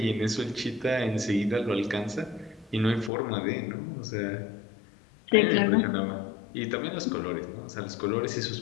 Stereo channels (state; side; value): drops out; right; at 3.1 s